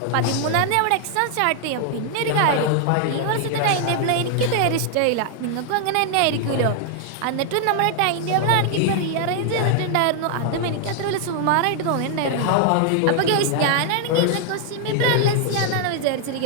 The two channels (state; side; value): different; both; correlation 0.00